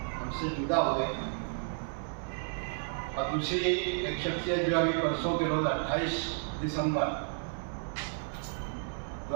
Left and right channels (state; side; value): silent; left; 56 dB below the other